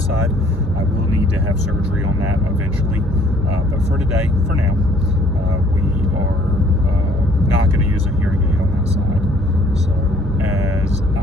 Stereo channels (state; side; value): normal; both; correlation 0.59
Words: side. I will need to have surgery on that eventually, but for today, for now, we are not going to use a hearing aid on that side. So as